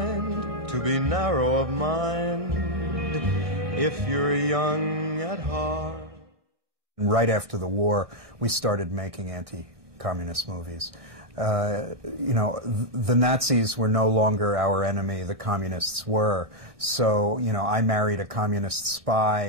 to be narrow of mind if you're young at heart. Right after the war, we started making anti-communist movies. You know, the Nazis were no longer our enemy, the communists were. So, you know, I Married a Communist Spy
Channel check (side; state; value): left; late; 1.6 ms